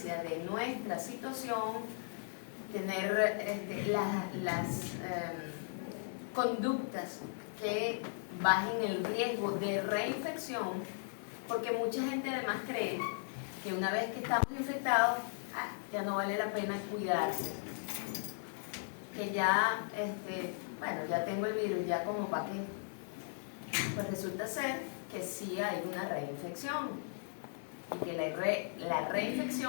de nuestra situación, tener las conductas que bajen el riesgo de reinfección, porque mucha gente además cree que una vez que estamos infectados, ya no vale la pena cuidarse, que ya, bueno, ya tengo el virus, ya como para qué. Pues resulta ser que sí hay una reinfección y que la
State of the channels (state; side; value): silent; right; digital silence